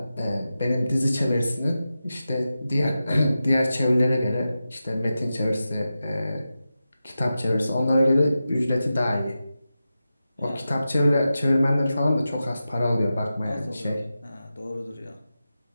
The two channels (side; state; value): both; inverted; correlation -0.92